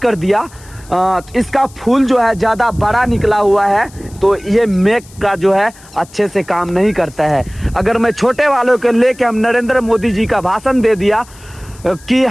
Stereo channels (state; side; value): noise; left; hiss, 24 dB below the sound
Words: दिया, इसका फूल जो है ज़्यादा बड़ा निकला हुआ है तो ये मेक का जो है अच्छे से काम नहीं करता है। अगर मैं छोटे वालों के लेके हम नरेंद्र मोदी जी का भाषण दे दिया कि